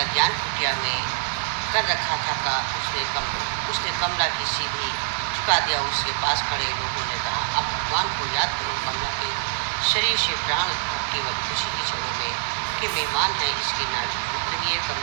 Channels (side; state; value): left; silent; digital silence